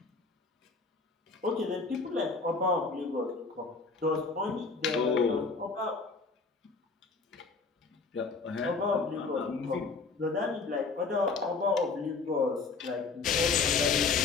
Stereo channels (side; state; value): right; quieter; 4.3 dB